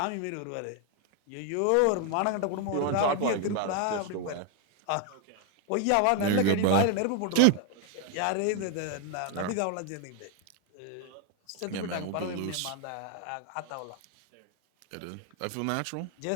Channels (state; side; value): different; both; correlation 0.01